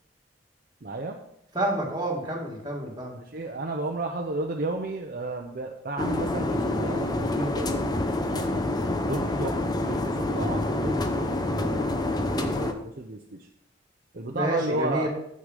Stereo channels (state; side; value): normal; both; correlation 0.50